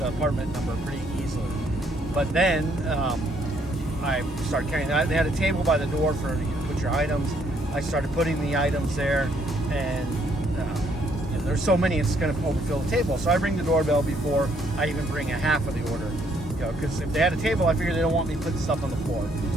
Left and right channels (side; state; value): both; normal; correlation 0.69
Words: apartment number pretty easily. But then I started carrying that. They had a table by the door for you to put your items. I started putting the items there, and there's so many, it's going to overfill the table. So I ring the doorbell before I even bring a half of the order. Because if they had a table, I figured they don't want me putting stuff on the floor.